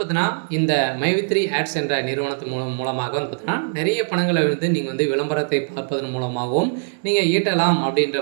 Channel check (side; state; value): left; silent; digital silence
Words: இந்த மைவி3 ஆட்ஸ் என்ற நிறுவனத்து மூலமாக பார்த்தீங்கன்னா நிறைய பணங்களை நீங்கள் விளம்பரத்தை பார்ப்பதன் மூலமாகவும் நீங்கள் ஈட்டலாம் அப்படின்ற